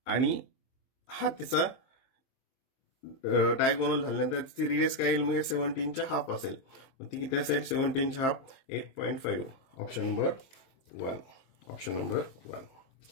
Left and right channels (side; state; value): right; late; 23 ms